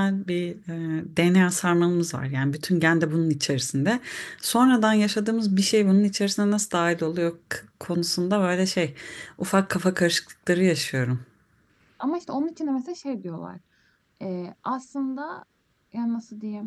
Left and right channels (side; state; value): both; identical; correlation 1.00